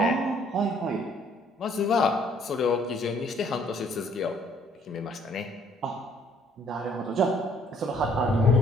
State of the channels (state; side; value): normal; both; correlation 0.62